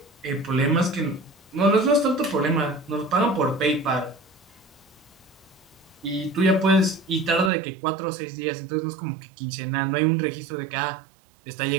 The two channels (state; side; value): drops out; left; at 7.5 s